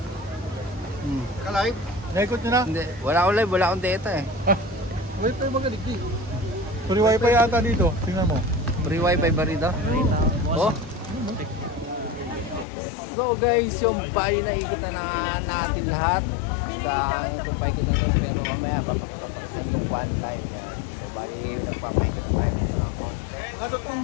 Ka-live? Naikot nyo na? Hindi. Wala akong live. Wala akong data eh. Wait tayo magaligdi. Free wifi yata dito. Tingnan mo. Free wifi ba rito? Oh. So guys, yung bali na ikot na natin lahat sa tumpay kita to, pero mamaya papakita pa sa inyo one time yan. So bali nagpapaikot na tayo ng konti.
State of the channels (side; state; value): right; drops out; at 12.7 s